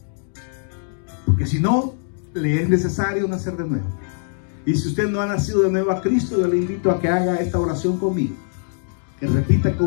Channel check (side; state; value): right; silent; 64 dB below the other